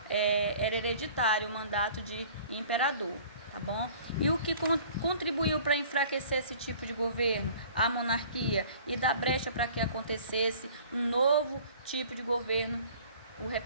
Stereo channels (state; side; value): inverted; both; correlation -0.49